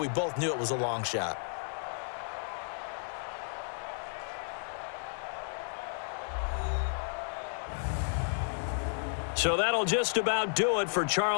both knew it was a long shot. So that'll just about do it for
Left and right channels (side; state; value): right; silent; 56 dB below the other